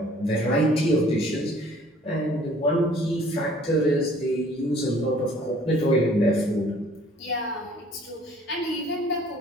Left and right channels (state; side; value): normal; both; correlation 0.55